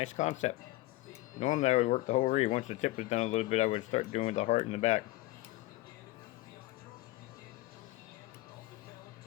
concept. Normally I would work the whole reed. Once the tip was done a little bit, I would start doing the heart in the back.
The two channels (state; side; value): quieter; right; 18.4 dB